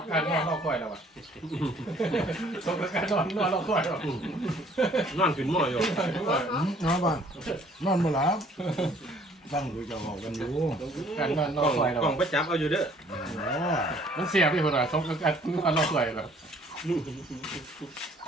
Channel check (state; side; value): normal; both; correlation 0.58